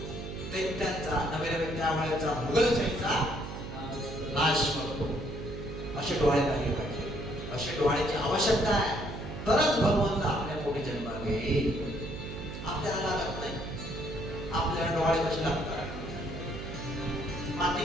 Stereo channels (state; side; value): noise; right; hum, 8 dB below the sound